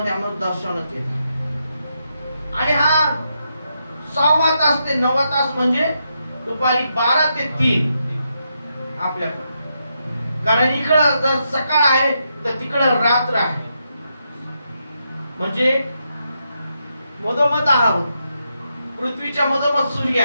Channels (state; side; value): inverted; both; correlation -0.82